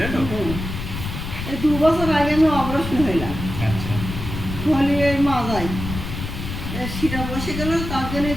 তো? এই 2 বছর আগে আমি অপারেশন হইলাম। আচ্ছা। হলি এই মাজায় শিরা বসে গেল, তার জন্য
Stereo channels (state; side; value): noise; left; rumble, 7 dB below the sound